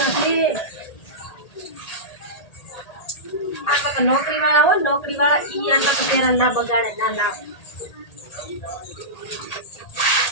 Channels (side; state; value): right; late; 1.8 ms